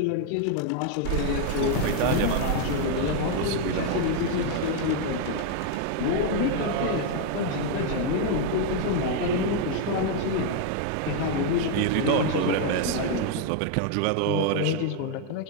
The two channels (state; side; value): different; both; correlation 0.00